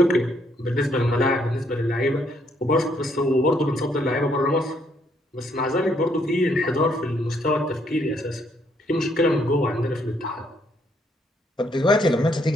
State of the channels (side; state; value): both; normal; correlation 0.71